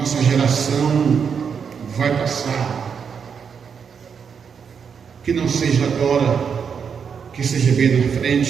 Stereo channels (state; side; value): quieter; left; 6.7 dB